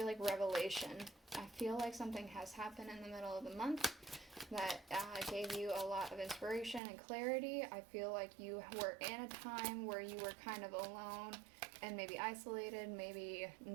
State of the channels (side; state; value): left; drops out; at 6.8 s